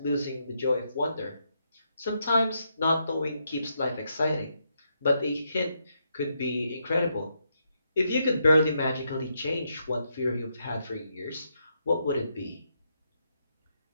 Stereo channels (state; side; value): inverted; both; correlation -0.79